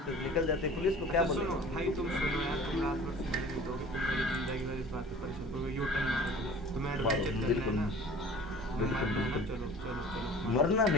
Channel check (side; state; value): both; normal; correlation 0.45